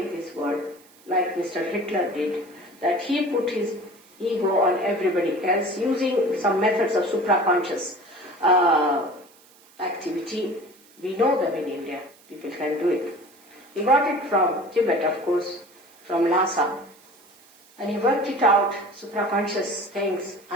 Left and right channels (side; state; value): right; noise; hiss, 27 dB below the sound